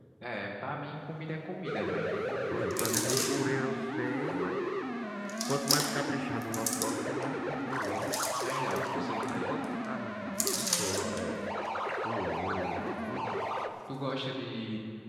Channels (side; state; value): both; identical; correlation 1.00